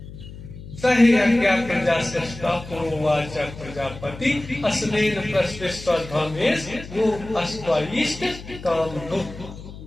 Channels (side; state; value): left; noise; hum, 14 dB below the sound